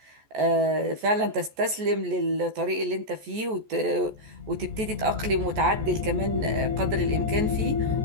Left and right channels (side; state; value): left; late; 14 ms